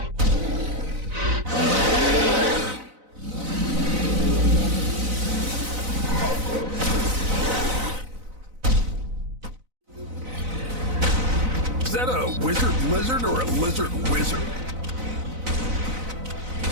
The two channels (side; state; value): left; late; 4.0 ms